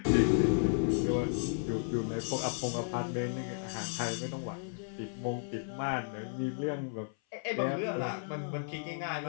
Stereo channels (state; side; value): silent; right; 55 dB below the other